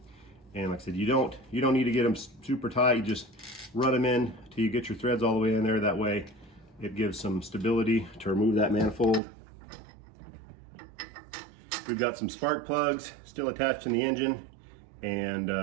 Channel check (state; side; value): drops out; left; at 9.2 s